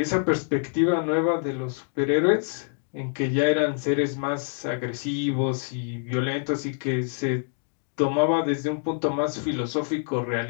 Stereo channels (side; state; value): right; silent; digital silence